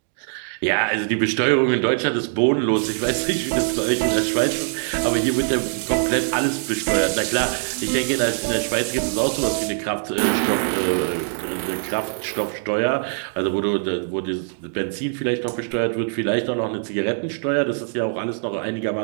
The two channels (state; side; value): silent; left; digital silence